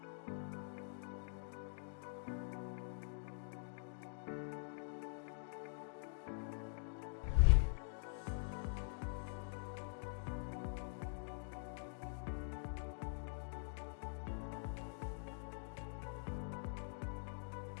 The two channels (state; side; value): silent; right; digital silence